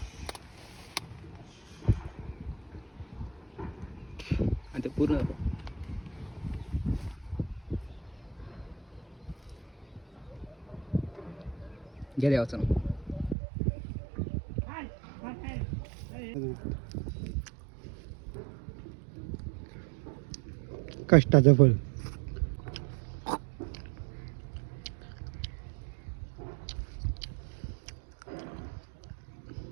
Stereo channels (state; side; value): drops out; left; at 13.4 s